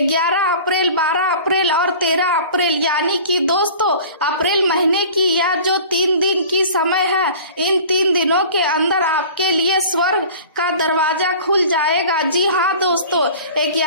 अप्रैल, 12 अप्रैल और 13 अप्रैल यानी कि दोस्तों अप्रैल महीने की यह जो 3 दिन की समय है, इन 3 दिनों के अंदर आपके लिए स्वर्ग का दरवाजा खुल जाएगा। जी हाँ दोस्तों,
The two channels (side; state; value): both; inverted; correlation -0.42